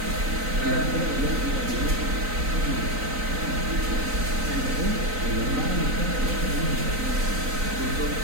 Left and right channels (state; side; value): late; left; 3.9 ms